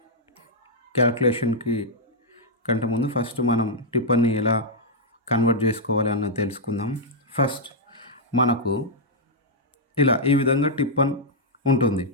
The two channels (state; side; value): normal; both; correlation -0.07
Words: క్యాల్కులేషన్కి కంటే ముందు ఫస్ట్ మనం టిప్పన్ని ఎలా కన్వర్ట్ చేసుకోవాలి అన్నది తెలుసుకుందాం. ఫస్ట్ మనకు ఇలా ఈ విధంగా టిప్పన్ ఉంటుంది.